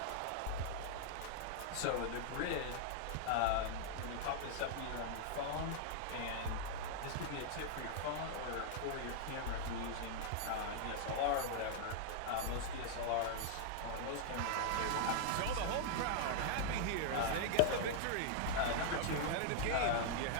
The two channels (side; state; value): both; different; correlation -0.01